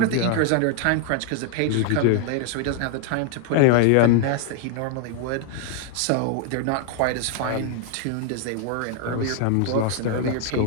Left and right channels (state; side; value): different; both; correlation 0.00